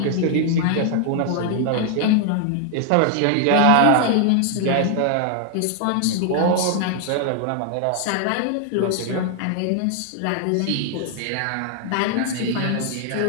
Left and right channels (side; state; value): both; different; correlation 0.00